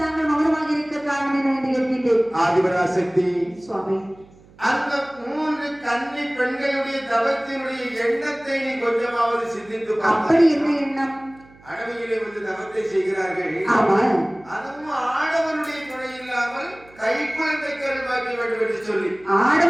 மௌனமாக இருக்க காரணம் என்ன என்று கேட்கின்றேன். ஆதிபராசக்தி சுவாமி, அந்த 3 கன்னி பெண்களுடைய தவத்தினுடைய எண்ணத்தை நீ கொஞ்சமாவது சிந்தித்து பார். அப்படி என்ன எண்ணம்? அடவியிலே வந்து தவத்தை செய்கிறார்கள். ஆமா, அதுவும் ஆடவனுடைய துணை இல்லாமல் கைக்குழந்தை கருவாக்கி வேண்டும் என்று சொல்லி,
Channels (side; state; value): right; noise; hum, 26 dB below the sound